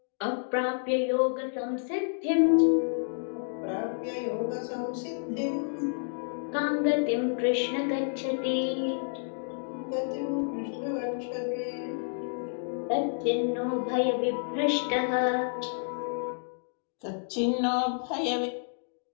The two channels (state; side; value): silent; right; digital silence